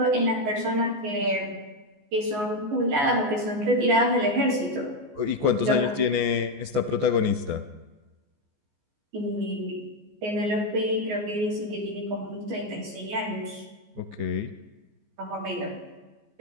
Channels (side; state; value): left; late; 14 ms